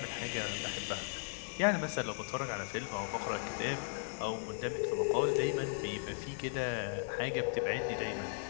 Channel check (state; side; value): silent; right; digital silence